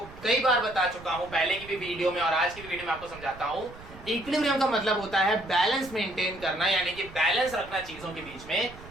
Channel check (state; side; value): noise; right; rumble, 18 dB below the sound